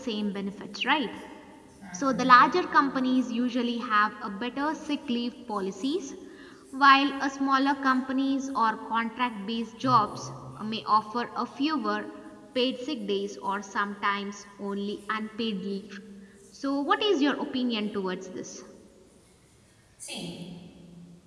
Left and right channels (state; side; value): identical; both; correlation 1.00